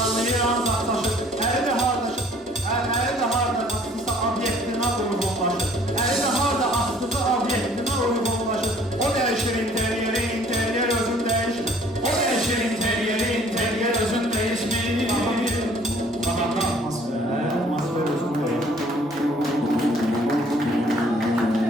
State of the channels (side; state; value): both; normal; correlation 0.57